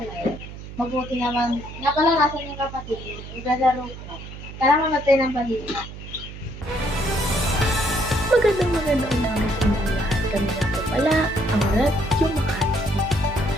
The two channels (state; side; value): noise; right; hum, 12 dB below the sound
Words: na yun. Mabuti naman. Nga pala, nasan yung kapatid mo? Naglalaro ko. Kailangan mamatay ng balita. Magandang umaga sa inyong lahat. Kami nga po pala ang Radyo Makati.